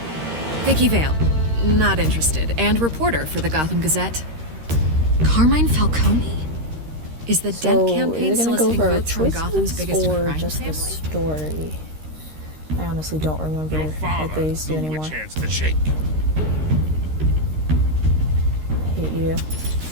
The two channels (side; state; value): left; late; 13 ms